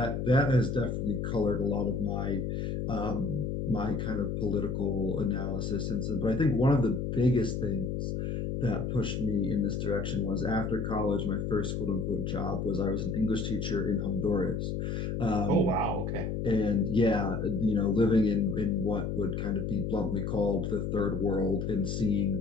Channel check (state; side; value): noise; left; hum, 2 dB below the sound